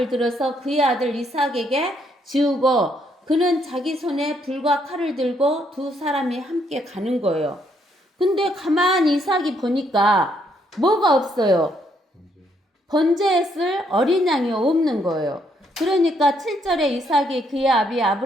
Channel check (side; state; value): both; normal; correlation 0.72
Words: 들어서 그의 아들 이삭에게 지우고 그는 자기 손에 불과 칼을 들고 두 사람이 함께 가는 거예요. 근데 가만히 이삭이 보니까 뭐가 없어요? 번제에 쓸 어린 양이 없는 거예요. 그러니까 7절에 이삭이 그의 아비